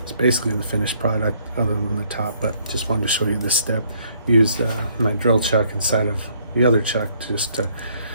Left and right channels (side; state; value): both; inverted; correlation -0.65